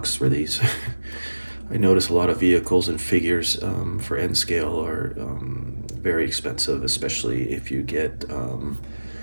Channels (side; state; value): both; inverted; correlation -1.00